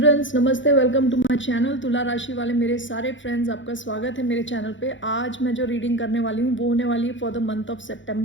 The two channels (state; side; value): late; right; 0.55 ms